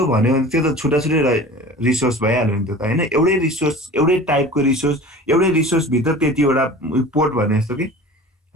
भन्यो भने त्यो त छुट्टा छुट्टै रिसोर्स भइहाल्यो नि त हैन। एउटै रिसोर्स, एउटै टाइपको रिसोर्स, एउटै रिसोर्स भित्र त्यतिवटा पोर्ट भने जस्तो कि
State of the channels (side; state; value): both; normal; correlation 0.39